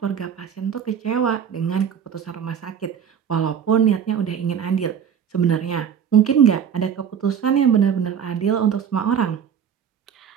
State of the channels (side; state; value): left; quieter; 8.0 dB